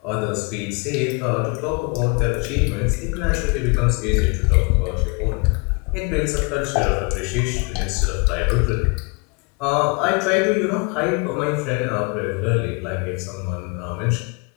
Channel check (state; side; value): quieter; right; 31.4 dB